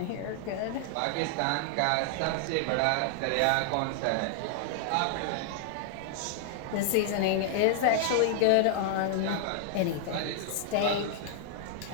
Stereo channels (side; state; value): both; different; correlation -0.01